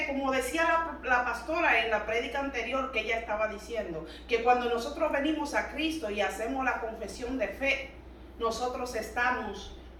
como decía la pastora en la prédica anterior que ella estaba diciendo, que cuando nosotros venimos a Cristo y hacemos la confesión de fe, nosotros estamos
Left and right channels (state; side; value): identical; both; correlation 1.00